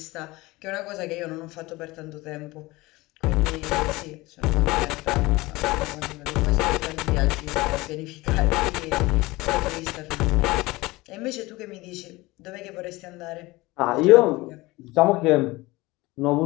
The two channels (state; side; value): quieter; right; 21.0 dB